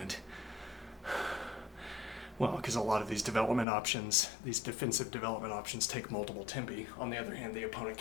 Well, because a lot of these development options, these defensive development options, take multiple tempi. On the other hand, the opponent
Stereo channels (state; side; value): drops out; right; at 3.7 s